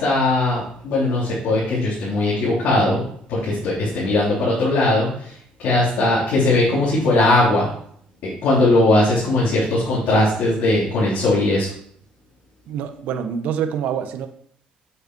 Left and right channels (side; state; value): both; normal; correlation 0.61